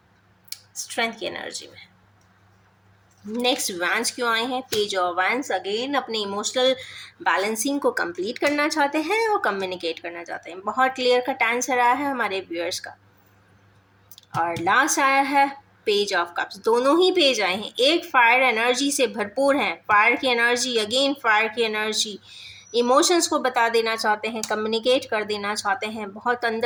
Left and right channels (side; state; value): both; identical; correlation 1.00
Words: स्ट्रेंथ की एनर्जी में है। नेक्स्ट वैंस क्यों आए हैं, पेज ऑफ वैंस। अगेन अपने इमोशनल बैलेंसिंग को कंप्लीट करना चाहते हैं और कम्युनिकेट करना चाहते हैं। बहुत क्लियर कट आंसर आया है हमारे व्यूअर्स का। और लास्ट आया है पेज ऑफ कप्स। दोनों ही पेज आए हैं, एक फायर एनर्जी से भरपूर है, फायर की एनर्जी, अगेन फायर की एनर्जी, इमोशंस को बता देना चाहते हैं, कम्युनिकेट कर देना चाहते हैं, बहुत